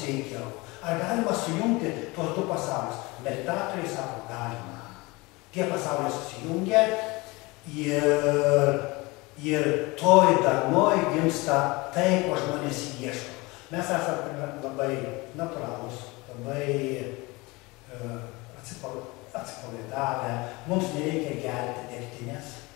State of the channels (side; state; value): right; quieter; 24.0 dB